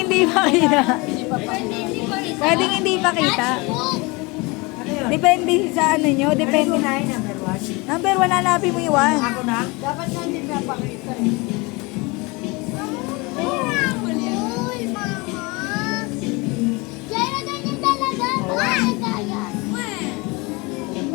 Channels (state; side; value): quieter; right; 25.8 dB